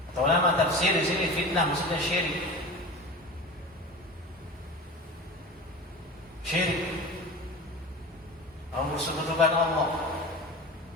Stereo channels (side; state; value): both; normal; correlation 0.32